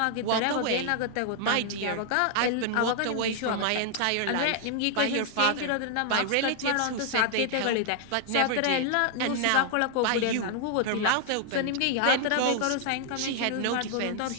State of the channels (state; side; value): different; both; correlation 0.00